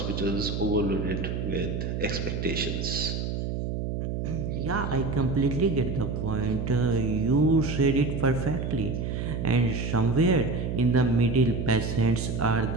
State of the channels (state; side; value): noise; right; hum, 3 dB below the sound